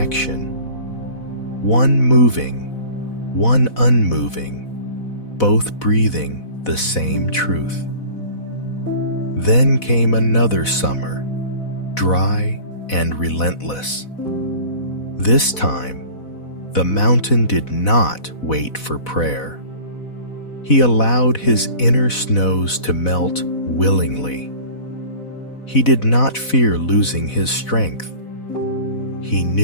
one moving, one unmoving, both breathing the same truth. Then came another summer, dry and relentless. This time, the mountain did not wait for prayer. He allowed his inner snows to melt willingly. He did not fear losing his strength. He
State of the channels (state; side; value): late; right; 4.1 ms